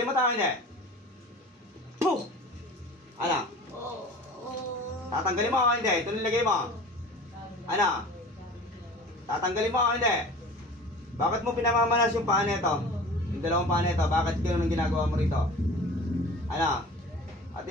mo tayo hindi? Puh! Ano? Tatanggalin mo o hindi? Ito nilagay mo. Ano? Tatanggalin mo o hindi? Bakit mo pinamamanas yung paa nito? Yung dalawang paa nito, bakit gano'n ang ginagawa mo rito? Ano? At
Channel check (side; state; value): both; normal; correlation 0.40